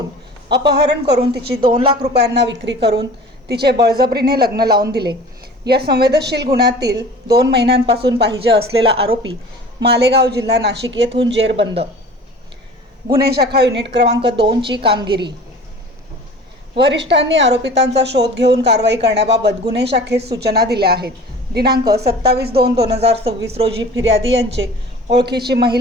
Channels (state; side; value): normal; both; correlation 0.42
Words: अपहरण करून तिची 2 लाख रुपयांना विक्री करून तिचे बळजबरीने लग्न लावून दिले। या संवेदनशील गुन्ह्यातील 2 महिन्यांपासून पाहिजे असलेला आरोपी मालेगाव जिल्हा नाशिक येथून जेरबंद। गुन्हे शाखा युनिट क्रमांक 2 ची कामगिरी। वरिष्ठांनी आरोपितांचा शोध घेऊन कारवाई करण्याबाबत गुन्हे शाखेस सूचना दिल्या आहेत। दिनांक 27/2/2026 रोजी फिर्यादी यांचे ओळखीची